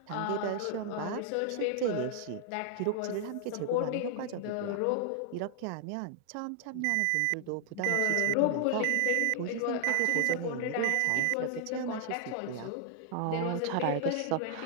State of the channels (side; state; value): both; different; correlation 0.00